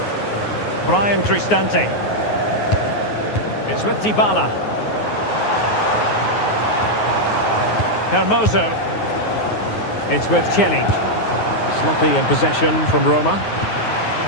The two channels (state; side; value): late; right; 9.5 ms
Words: Brian Cristante. It's with Dybala. Hermoso. It's with Celik. Sloppy in possession from Roma.